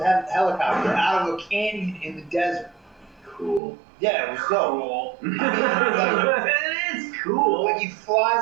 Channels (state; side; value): drops out; left; at 3.6 s